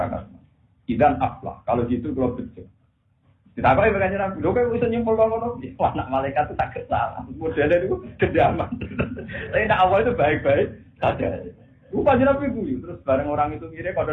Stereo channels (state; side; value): identical; both; correlation 1.00